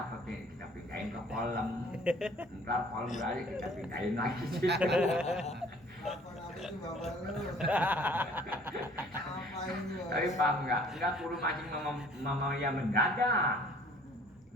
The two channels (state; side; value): normal; both; correlation 0.54